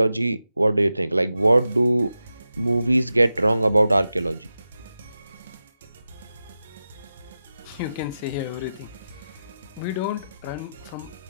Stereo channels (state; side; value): inverted; both; correlation -0.91